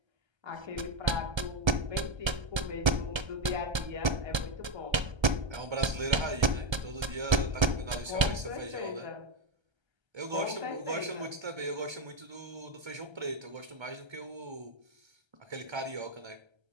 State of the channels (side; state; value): left; late; 1.3 ms